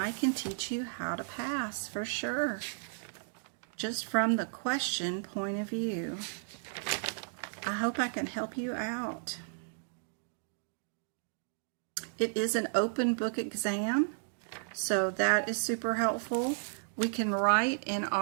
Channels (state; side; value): silent; left; digital silence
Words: can teach you how to pass for sure, just from the question point of view. I hope I can help you out. It is an open book exam, so that is super helpful. We can write in